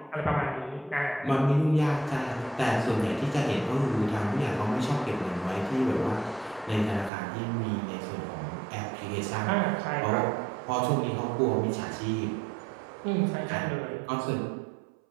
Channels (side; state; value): left; drops out; at 7.1 s